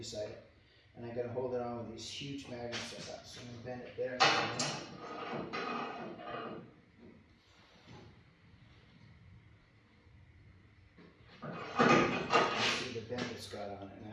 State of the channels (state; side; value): identical; both; correlation 1.00